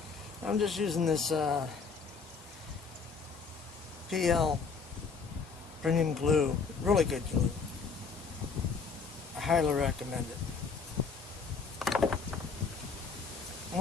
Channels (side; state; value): right; quieter; 5.1 dB